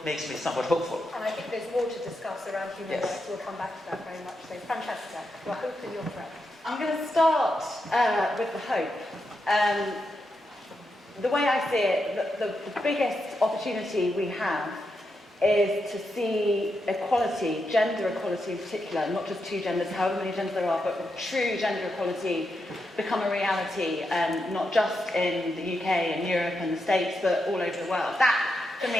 makes me somewhat hopeful. And I think there's more to discuss around human rights. We'll come back to that very much. So, Francesca, your hope and your threat. I'm going to start with the hope. The way I see it, the biggest opportunity we have is to see equality, gender equality in particular, not just two genders, however many genders there are, but true gender equality become a reality, not just in the UK and Europe and the States, but all over the world. That, for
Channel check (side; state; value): both; normal; correlation 0.85